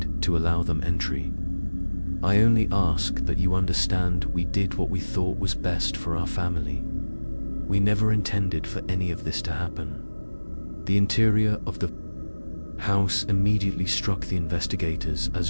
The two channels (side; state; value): both; inverted; correlation -1.00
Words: to allow them entry. "I only ask that you understand we did what we thought was best for our family. We never intended for any of this to happen." The interior of the house immediately struck the investigators